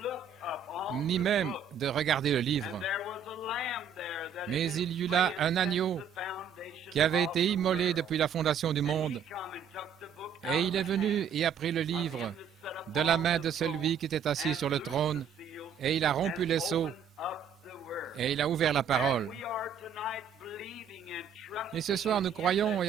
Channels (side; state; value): left; quieter; 6.8 dB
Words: ni même de regarder le livre. Mais il y eut là un agneau qui avait été immolé depuis la fondation du monde, et il est venu et a pris le livre de la main de celui qui était assis sur le trône, et il a rompu les sceaux, et il a ouvert la parole. Et ce soir, nous croyons